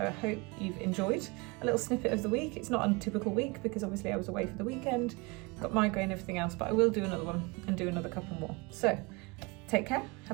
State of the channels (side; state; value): left; quieter; 26.7 dB